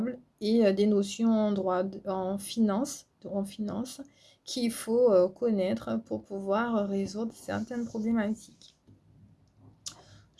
et des notions en droit, en finance qu'il faut connaître pour pouvoir résoudre certaines problématiques.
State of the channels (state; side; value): identical; both; correlation 1.00